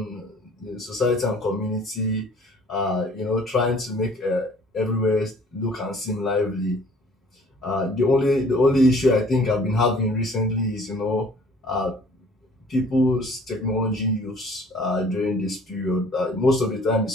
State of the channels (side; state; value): both; normal; correlation 0.54